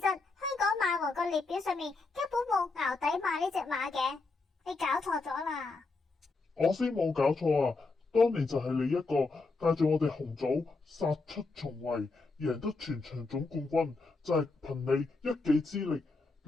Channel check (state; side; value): quieter; right; 3.8 dB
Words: 香港馬王個列表上面根本冇淆底馬呢隻馬嘅，你搞錯咗啦。我先冇搞錯啊！當年就係你一個帶住我哋紅組殺出重圍，贏得全場總冠軍，就係憑你一己之力